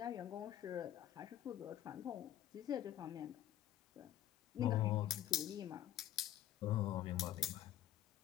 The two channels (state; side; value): quieter; right; 12.2 dB